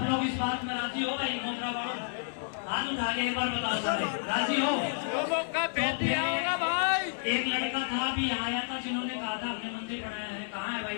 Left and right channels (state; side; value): silent; right; digital silence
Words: लोग इस बात में राजी हो भाई, मोखरा वालों हाथ उठा के एक बार बताओ सारे राजी हो तो फिर एक लड़का था अभी यहाँ आया था जिन्होंने कहा था हमने मंदिर बनाया है, कहाँ है